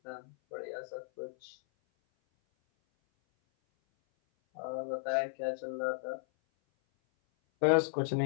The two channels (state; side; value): silent; right; 55 dB below the other